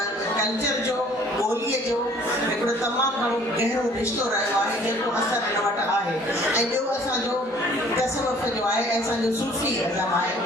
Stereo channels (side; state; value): both; normal; correlation 0.55